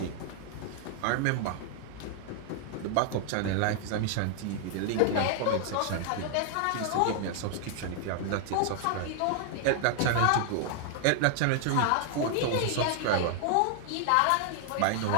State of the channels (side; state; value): both; different; correlation 0.00